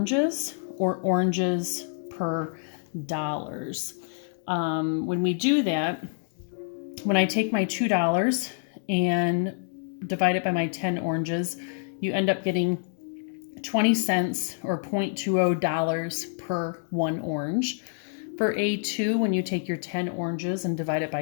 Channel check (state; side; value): silent; right; digital silence